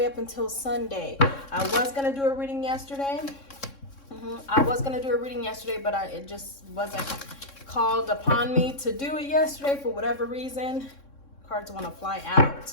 up until Sunday. I was going to do a reading yesterday. But it just wasn't called upon me to do it yesterday for whatever reason. Cards want to fly out.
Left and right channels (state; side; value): late; right; 3.6 ms